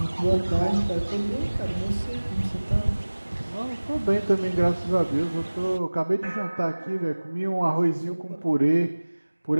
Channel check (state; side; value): inverted; both; correlation -1.00